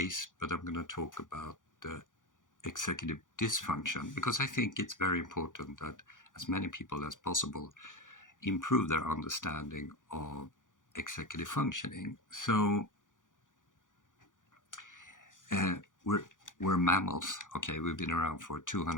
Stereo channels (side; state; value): right; late; 0.88 ms